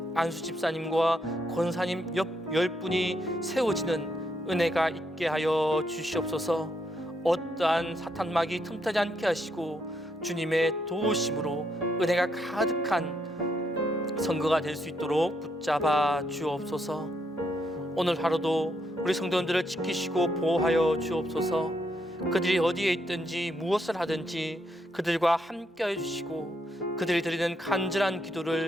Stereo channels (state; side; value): normal; both; correlation 0.77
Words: 안수집사님과 권사님 10분이 세워지는 은혜가 있게 하여 주시옵소서. 어떠한 사탄막이 틈타지 않게 하시고 주님의 도우심으로 은혜가 가득한 선거가 될 수 있도록 붙잡아 주옵소서. 오늘 하루도 우리 성도님들을 지키시고 보호하여 주옵소서. 그들이 어디에 있든지 무엇을 하든지 그들과 함께하여 주시고 그들이 드리는 간절한